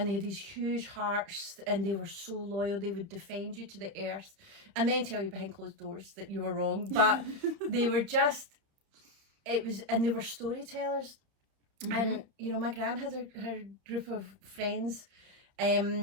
they had these huge hearts, and they were so loyal. They would defend you to the earth, and then tell you behind closed doors that you were wrong. But they were just. And they were storytellers. Mm-hmm. And my gran had her group of friends,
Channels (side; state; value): left; late; 31 ms